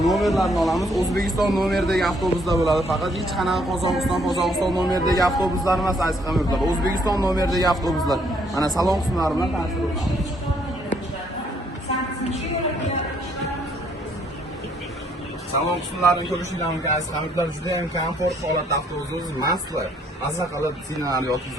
nomerlarni olamiz. O'zbekiston nomeridagi avtobuslar bo'ladi. Faqat hech qanaqa Qozog'iston nomeridagi avtobuslar emas aziz hamyurtlar. O'zbekiston nomeridagi avtobuslar. Mana salon qismlari bilan tanishib o'tiramiz. Salon qismlarini ko'rishingiz mumkin aziz hamyurtlar. Juda ham komfort holatda avtobusimiz mastlar. Maza qilib sinalar yoki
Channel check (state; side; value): normal; both; correlation 0.68